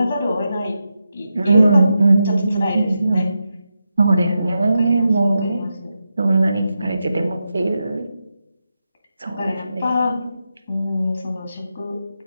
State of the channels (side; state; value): both; inverted; correlation -0.88